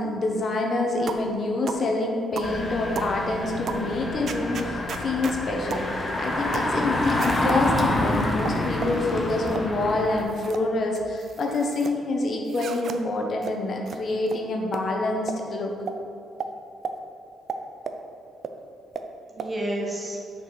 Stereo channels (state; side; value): normal; both; correlation 0.76